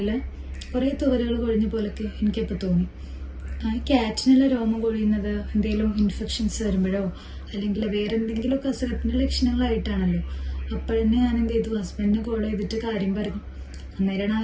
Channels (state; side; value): identical; both; correlation 1.00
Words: കുറേ തുവലുകൾ കൊഴിഞ്ഞ പോലൊക്കെ എനിക്കപ്പോൾ തോന്നി. ക്യാറ്റിനുള്ള രോമം കൊഴിയുന്നത് എന്തെങ്കിലും ഇൻഫെക്ഷൻസ് വരുമ്പോഴോ അല്ലെങ്കിൽ വേറെ എന്തെങ്കിലുമൊക്കെ അസുഖത്തിൻ്റെ ലക്ഷണങ്ങളായിട്ടാണല്ലോ. അപ്പോഴന്നെ ഞാൻ എന്ത് ചെയ്തു, ഹസ്ബൻഡിനെ കോൾ ചെയ്തിട്ട് കാര്യം പറഞ്ഞു. അന്നേരമാണ്